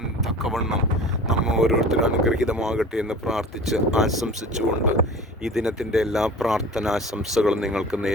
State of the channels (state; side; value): normal; both; correlation 0.39